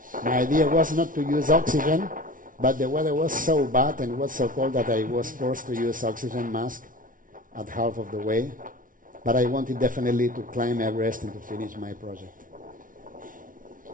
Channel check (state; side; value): late; left; 0.39 ms